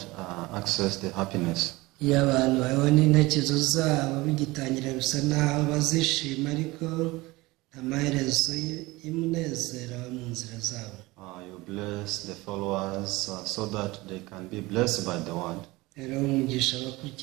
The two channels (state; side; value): quieter; left; 21.3 dB